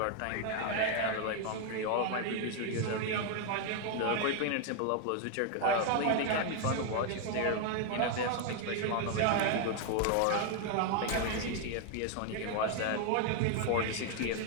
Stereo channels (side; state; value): both; different; correlation 0.01